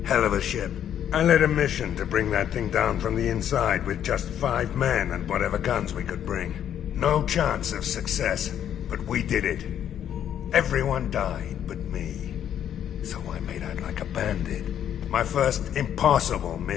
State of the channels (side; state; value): right; quieter; 9.9 dB